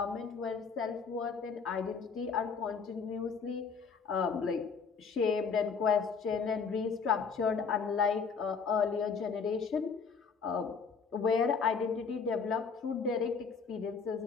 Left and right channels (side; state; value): right; quieter; 5.6 dB